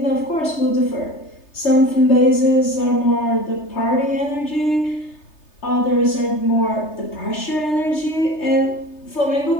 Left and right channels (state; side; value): late; right; 3.3 ms